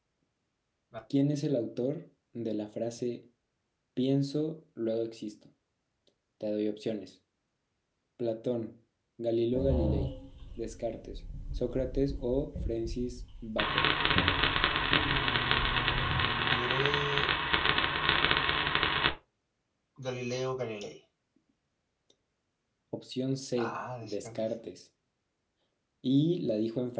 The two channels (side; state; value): both; identical; correlation 1.00